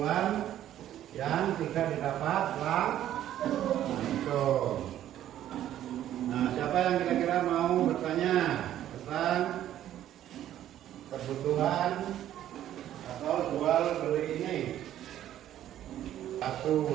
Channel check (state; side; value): quieter; left; 11.9 dB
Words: yang tidak didapat langsung. Nah, siapa yang kira-kira mau bertanya tentang kebutuhan atau jual beli ini?